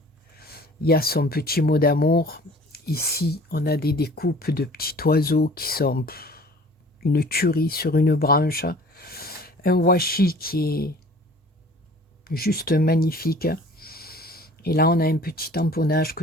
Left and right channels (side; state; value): both; normal; correlation 0.48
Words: Il y a son petit mot d'amour. Ici, on a des découpes de petits oiseaux qui sont une tuerie sur une branche. Un washi qui est juste magnifique. Et là, on a un petit tamponnage